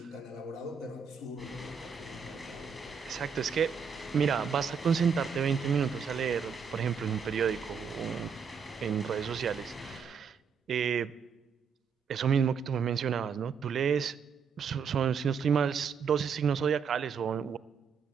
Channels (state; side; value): quieter; left; 6.3 dB